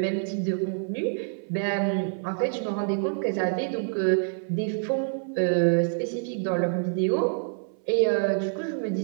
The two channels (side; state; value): left; silent; 60 dB below the other